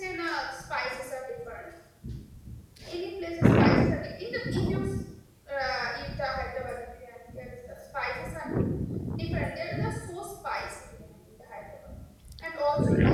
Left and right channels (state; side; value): identical; both; correlation 1.00